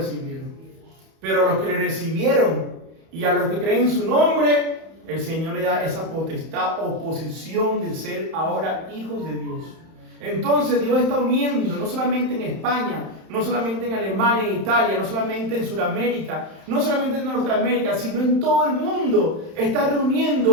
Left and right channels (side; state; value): left; late; 31 ms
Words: Pero a los que le recibieron y a los que creen en su nombre, el Señor le da esa potestad o posición de ser ahora hijos de Dios. Entonces Dios está uniendo, no solamente en España, no solamente en Alemania, en Italia, no solamente en Sudamérica, no solamente en Norteamérica, sino en todo el mundo. Está